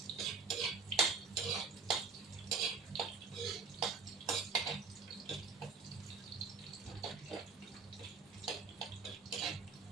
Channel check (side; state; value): left; quieter; 4.8 dB